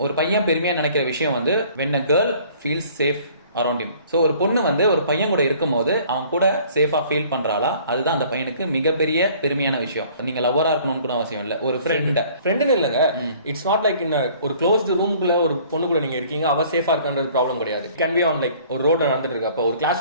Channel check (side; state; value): both; inverted; correlation -0.54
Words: ஒரு பையன் பெருமையா நினைக்கிற விஷயம் வந்து when a girl feels safe around him. So ஒரு பொண்ணு வந்து ஒரு பையன் கூட இருக்கும் போது அவன் கூட சேஃபா ஃபீல் பண்றாளா, அதுதான் அந்த பையனுக்கு மிகப்பெரிய பெருமையான விஷயம். நீங்க லவ்வரா இருக்கணும்னு கூட அவசியம் இல்ல, ஒரு ஃப்ரெண்ட் இல்லங்க. இட்ஸ் நாட் லைக் இன் ஒரு க்ளோஸ்டு ரூமுக்குள்ள ஒரு பொண்ணு கூட நீங்க இருக்கீங்க, அவ சேஃபா இருக்கான்றது ப்ராப்ளம் கிடையாது. கேன் பி ஆன் லைக் ஒரு ரோட்ல நடந்துட்டு இருக்கு, அப்ப ஒரு கிளாஸ்